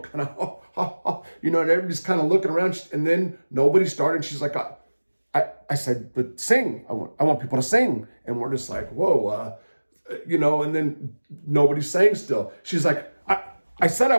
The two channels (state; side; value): inverted; both; correlation -1.00